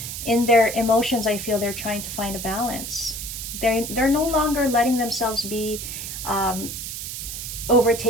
in their emotions. I feel they're trying to find a balance. They're no longer letting themselves be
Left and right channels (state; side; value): noise; right; hiss, 7 dB below the sound